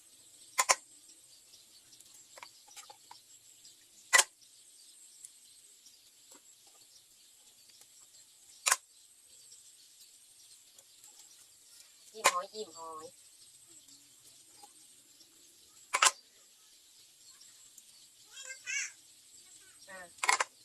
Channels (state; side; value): identical; both; correlation 1.00